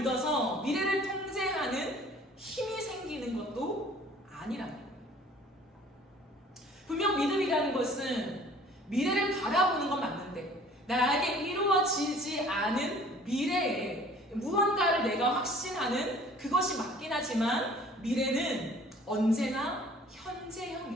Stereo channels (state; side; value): normal; both; correlation 0.51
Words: 미래를 통제하는 힘이 생기는 것도 아니라는 거예요. 분명 믿음이라는 것은 미래를 바라보는 건 맞는데 나에게 이루어지지 않은 미래에 무언가를 내가 확신하는 그것이 맞긴 하지만 미래는 언제나 현재형이라는